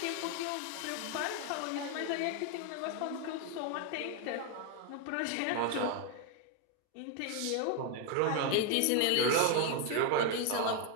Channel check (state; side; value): different; both; correlation 0.01